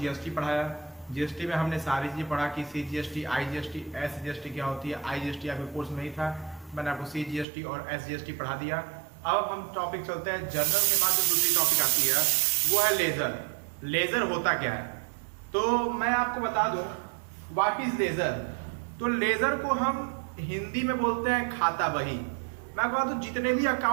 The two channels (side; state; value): left; drops out; at 7.5 s